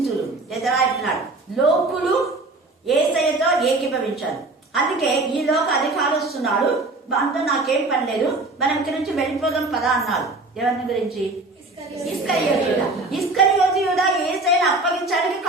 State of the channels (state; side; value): quieter; left; 3.1 dB